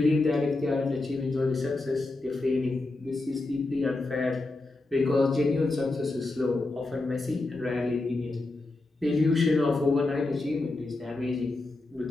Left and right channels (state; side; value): quieter; right; 3.1 dB